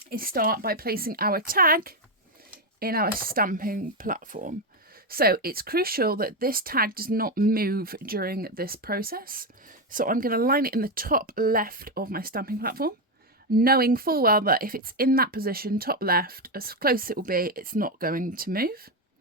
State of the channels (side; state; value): both; normal; correlation 0.08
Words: is start by placing our tag in our stamping platform. So it's crucial that this tag does not move during this process. So I'm going to line it in the top left of my stamping platform, knowing full well that if it's in that position, top left, as close as it will be, it's not going to move.